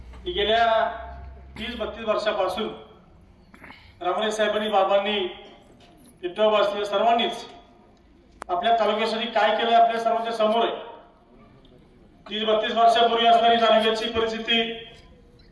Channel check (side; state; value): both; identical; correlation 1.00